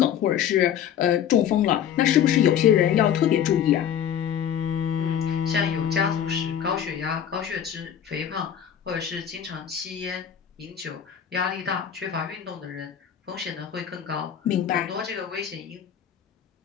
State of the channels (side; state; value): right; quieter; 9.2 dB